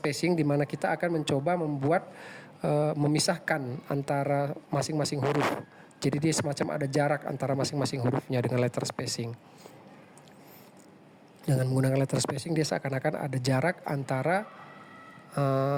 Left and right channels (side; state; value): both; identical; correlation 1.00